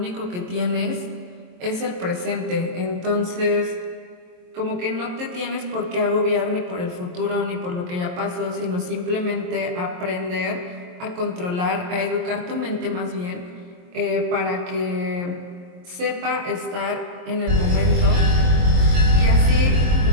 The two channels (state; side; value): late; left; 23 ms